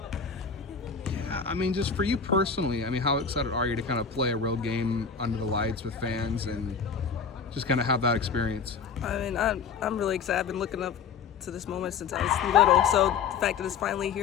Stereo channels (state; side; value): quieter; right; 6.1 dB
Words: I mean, just for you personally, I mean, how excited are you to kind of play a real game under the lights with fans and just kind of have that experience? I mean, I'm really excited. I've been looking up to this moment since I was little. So the fact that it's finally